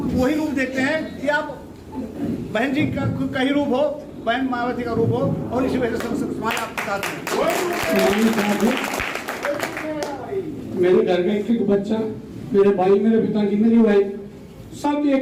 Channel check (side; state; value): both; identical; correlation 1.00